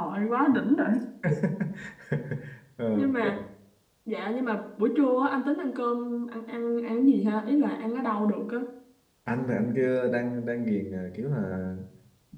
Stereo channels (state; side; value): identical; both; correlation 1.00